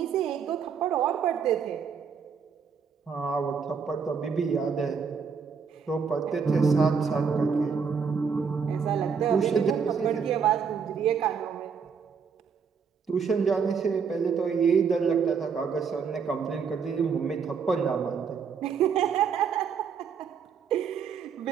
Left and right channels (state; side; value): quieter; left; 6.3 dB